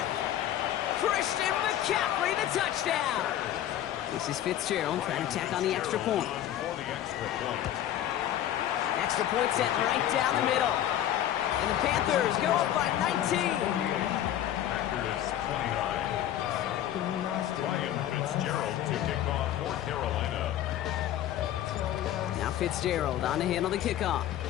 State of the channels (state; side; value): quieter; right; 11.8 dB